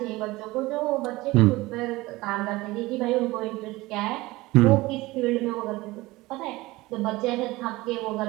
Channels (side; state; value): left; quieter; 20.0 dB